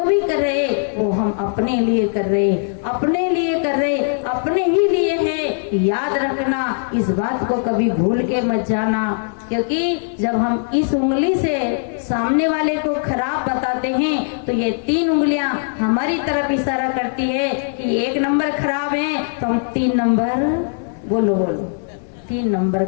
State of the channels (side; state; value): right; silent; digital silence